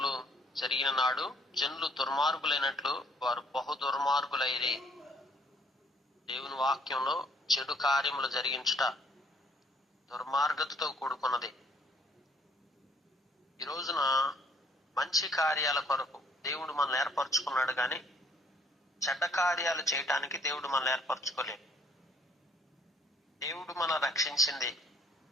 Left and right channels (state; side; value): normal; both; correlation 0.63